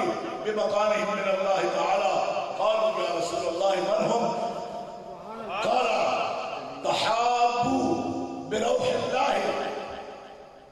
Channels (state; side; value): identical; both; correlation 1.00